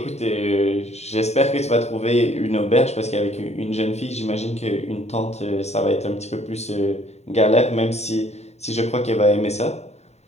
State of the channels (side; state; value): right; late; 0.32 ms